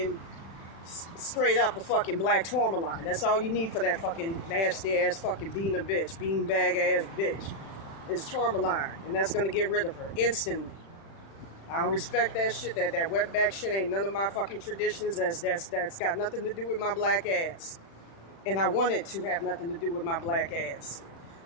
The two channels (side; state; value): right; late; 36 ms